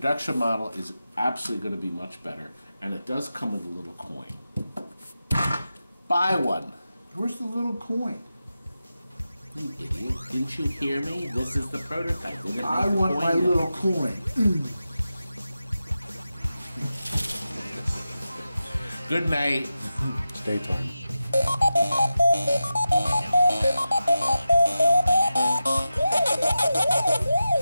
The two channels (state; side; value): inverted; both; correlation -0.92